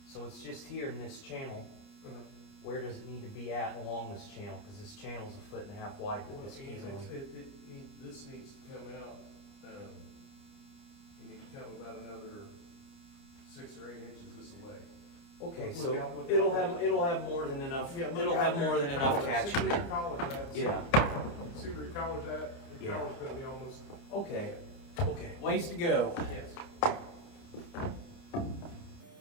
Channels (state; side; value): late; right; 29 ms